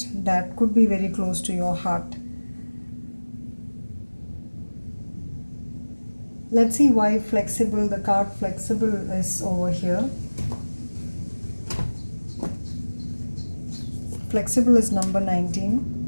that could be very close to your heart. Let's see why flexible, the card flexible, is over here. Flexible is number 19.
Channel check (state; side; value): inverted; both; correlation -1.00